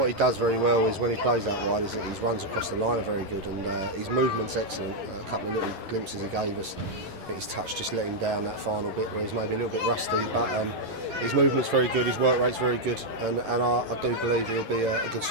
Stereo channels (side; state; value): left; late; 11 ms